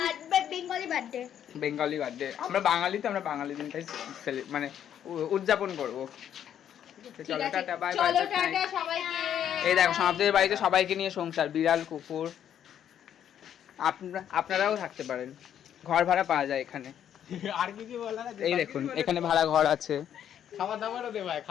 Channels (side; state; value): right; quieter; 9.7 dB